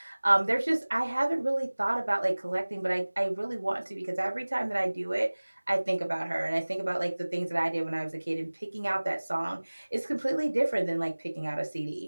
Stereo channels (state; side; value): inverted; both; correlation -1.00